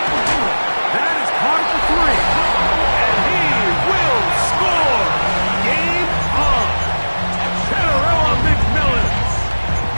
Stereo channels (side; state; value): both; inverted; correlation -1.00